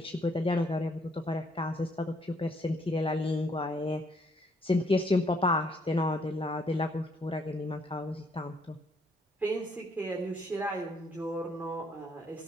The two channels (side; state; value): both; normal; correlation 0.69